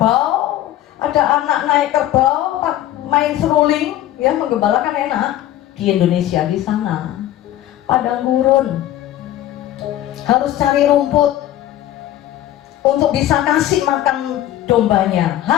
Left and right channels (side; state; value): right; quieter; 13.2 dB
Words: ada anak naik kerbau, main seruling, ya menggembalakan enak. Di Indonesia di sana padang gurun, harus cari rumput untuk bisa kasih makan dombanya,